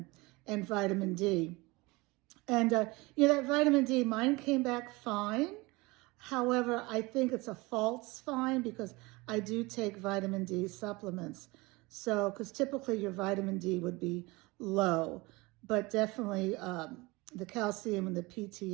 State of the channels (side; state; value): left; quieter; 23.6 dB